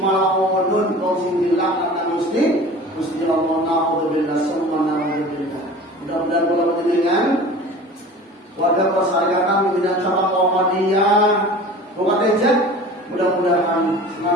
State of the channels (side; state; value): both; normal; correlation 0.40